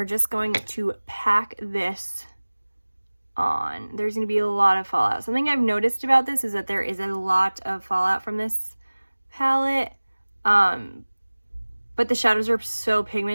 just going to pack this on. There's going to be a lot of fallout. Something I've noticed about this is that there is a lot of fallout from this palette. But the shadows are so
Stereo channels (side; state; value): both; inverted; correlation -1.00